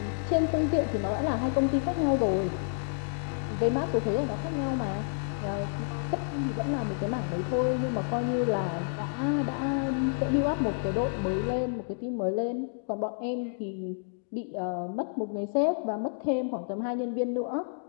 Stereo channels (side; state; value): right; silent; digital silence